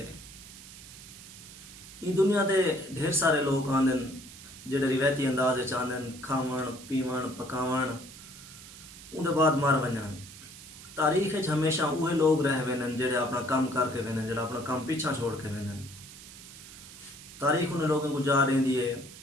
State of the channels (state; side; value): noise; right; hiss, 16 dB below the sound